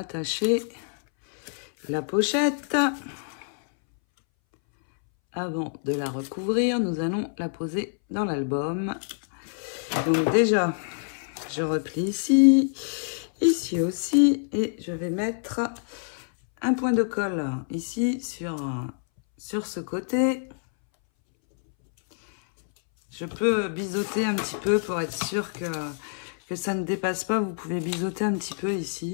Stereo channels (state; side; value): silent; right; 61 dB below the other